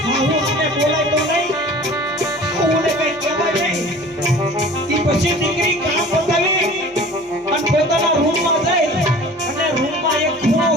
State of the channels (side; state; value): both; normal; correlation 0.44